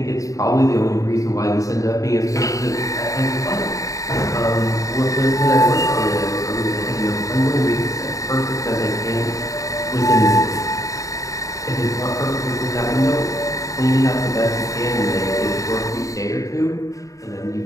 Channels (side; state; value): right; late; 0.16 ms